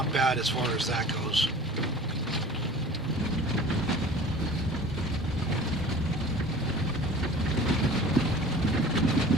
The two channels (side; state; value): both; normal; correlation 0.43